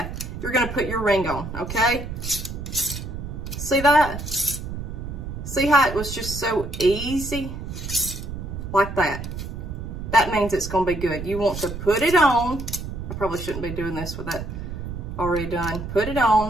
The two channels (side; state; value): right; noise; rumble, 7 dB below the sound